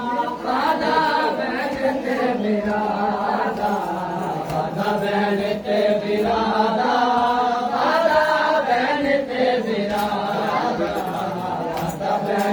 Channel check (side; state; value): both; identical; correlation 1.00